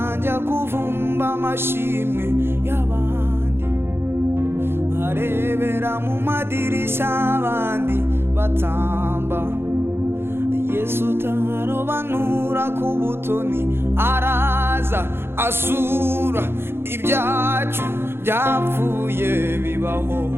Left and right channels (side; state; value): left; late; 0.11 ms